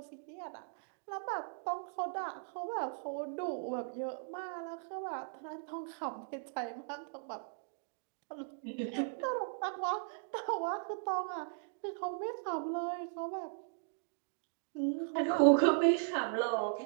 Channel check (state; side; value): silent; left; digital silence